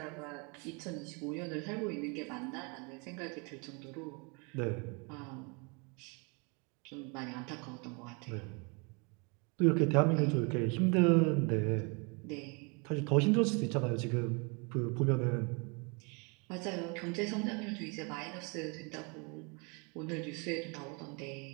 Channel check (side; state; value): left; quieter; 32.2 dB